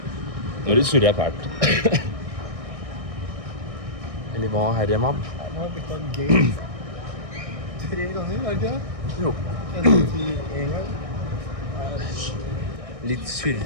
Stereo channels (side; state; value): left; late; 1.6 ms